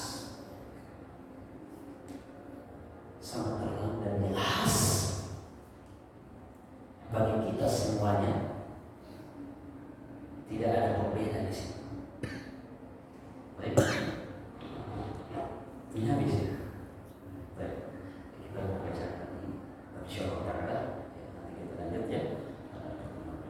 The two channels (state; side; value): identical; both; correlation 1.00